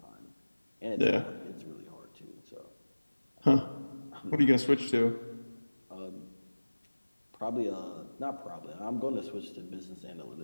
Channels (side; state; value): both; inverted; correlation -1.00